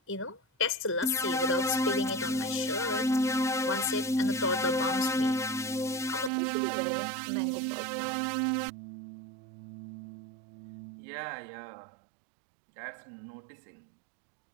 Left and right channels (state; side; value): drops out; left; at 6.3 s